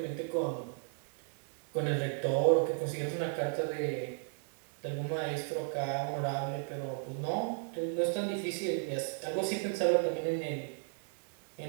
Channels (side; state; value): left; silent; 54 dB below the other